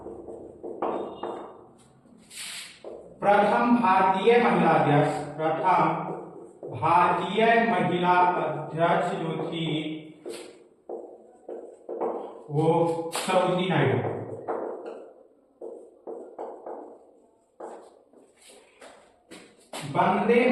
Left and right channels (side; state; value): both; identical; correlation 1.00